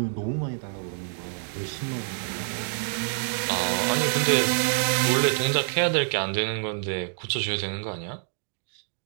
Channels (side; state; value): left; silent; digital silence